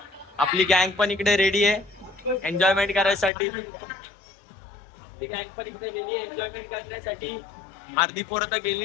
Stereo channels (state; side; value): drops out; right; at 3.3 s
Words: आपली गँग पण इकडे रेडी आहे एन्जॉयमेंट करायसाठी. आपली गँग पण इकडे रेडी आहे एन्जॉयमेंट करण्यासाठी. अर्धी पोरं तर